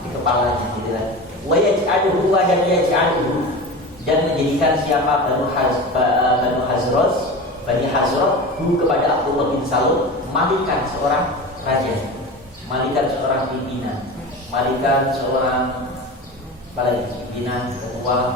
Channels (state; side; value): normal; both; correlation 0.29